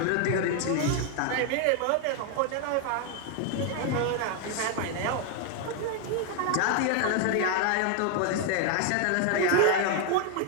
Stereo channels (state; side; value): different; both; correlation 0.01